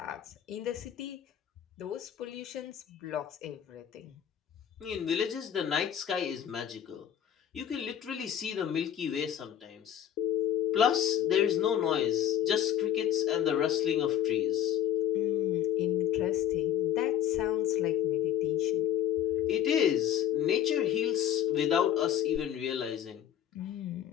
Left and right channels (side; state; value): right; quieter; 10.1 dB